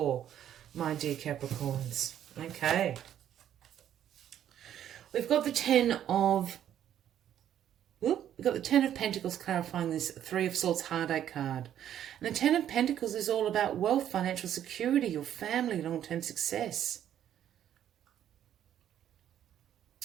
my dear Capricorns. Okay. We've got the Ten of Pentacles clarifying this Three of Swords heartache card. And the Ten of Pentacles is all about wealth, financial security, your family, long-term success.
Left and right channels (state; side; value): quieter; left; 10.6 dB